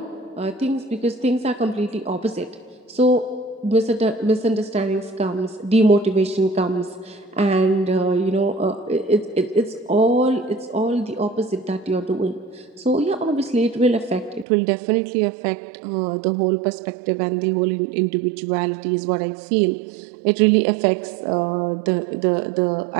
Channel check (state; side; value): drops out; left; at 14.5 s